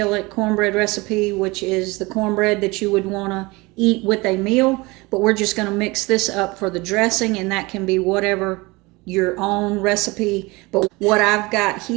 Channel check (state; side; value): quieter; left; 23.9 dB